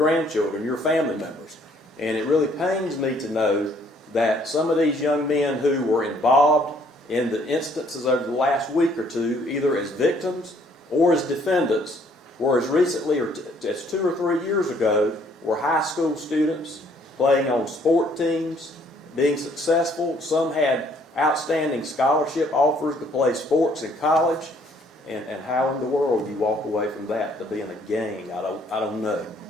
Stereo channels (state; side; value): normal; both; correlation 0.63